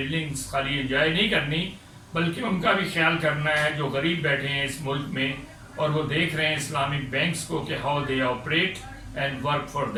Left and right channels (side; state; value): both; identical; correlation 1.00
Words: خالی انجوائے نہیں کرنی، بلکہ ان کا بھی خیال کرنا ہے جو غریب بیٹھے ہیں اس ملک میں اور وہ دیکھ رہے ہیں اسلامک بینکس کو کہ how they operate and work for